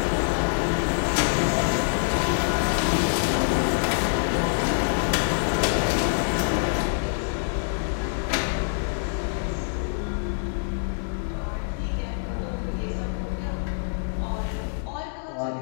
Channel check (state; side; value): silent; right; digital silence